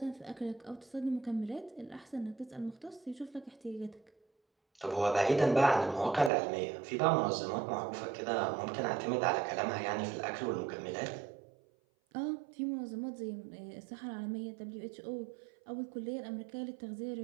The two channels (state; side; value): drops out; left; at 6.3 s